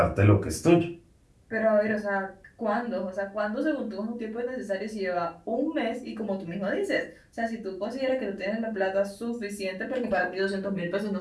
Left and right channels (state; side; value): identical; both; correlation 1.00